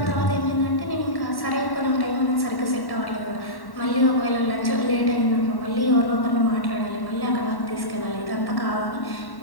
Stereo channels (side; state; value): right; late; 1.1 ms